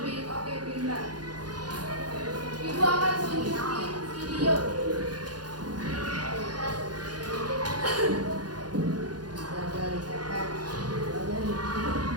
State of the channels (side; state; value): left; late; 0.69 ms